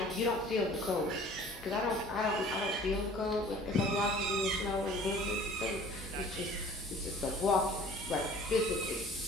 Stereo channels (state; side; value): normal; both; correlation 0.48